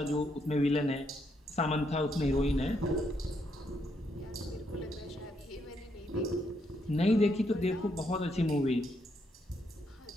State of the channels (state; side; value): normal; both; correlation 0.76